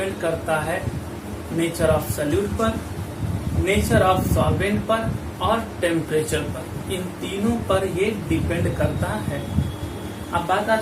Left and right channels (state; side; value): identical; both; correlation 1.00